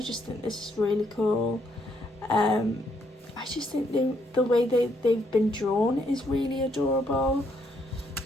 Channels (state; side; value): normal; both; correlation 0.73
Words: think this is really cool. I just think the way they've been drawn is really adorable.